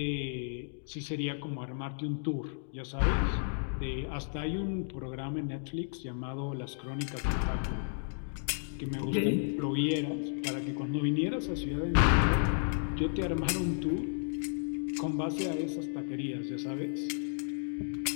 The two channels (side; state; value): right; silent; digital silence